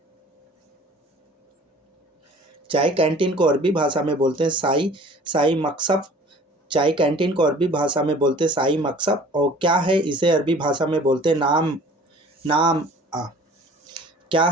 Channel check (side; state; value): both; normal; correlation 0.48